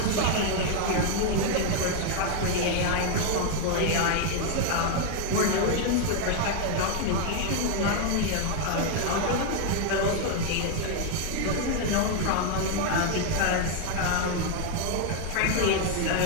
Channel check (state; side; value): different; both; correlation 0.01